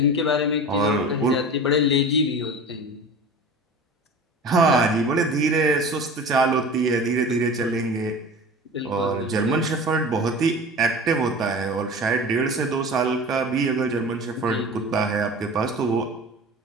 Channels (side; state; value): both; normal; correlation 0.36